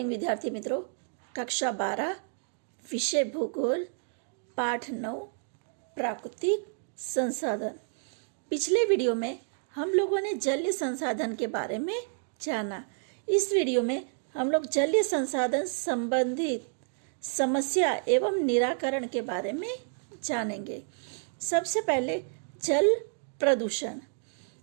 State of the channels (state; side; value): silent; left; 58 dB below the other